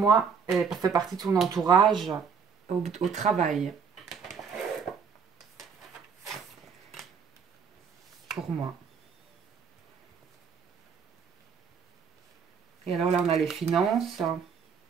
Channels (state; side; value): quieter; left; 6.3 dB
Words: elle fait partie de son entourage au travail. Pour moi. Et alors là, on a les finances.